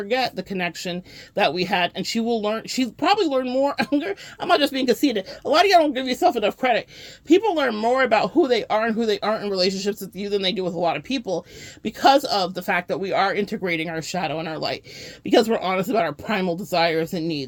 the connection that we had, and she'll probably learn more. I'm not just being conceited. A lot of y'all don't give yourself enough credit. People learn more about who they are and who they aren't in relationships with you than they do with a lot of people, because of the fact that we are integrating our shadow and our light, because we're honest about our primal desires and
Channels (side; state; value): both; identical; correlation 1.00